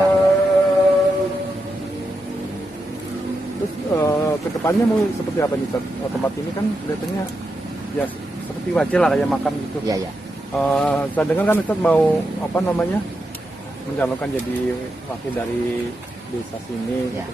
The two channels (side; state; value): both; normal; correlation 0.86